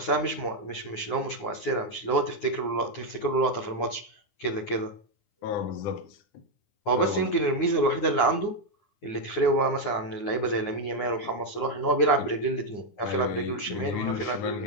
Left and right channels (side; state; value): right; late; 9.7 ms